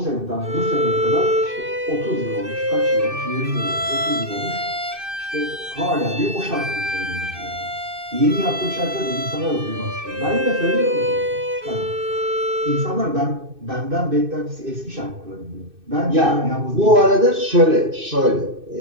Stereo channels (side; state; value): left; late; 2.6 ms